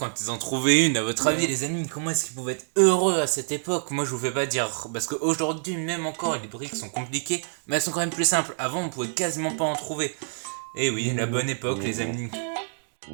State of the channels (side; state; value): left; silent; digital silence